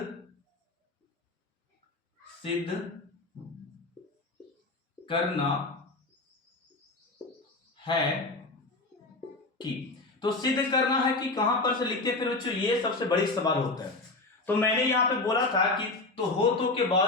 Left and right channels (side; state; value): right; quieter; 3.2 dB